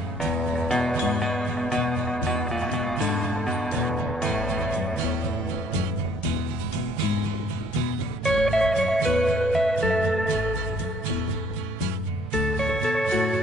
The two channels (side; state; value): both; normal; correlation 0.62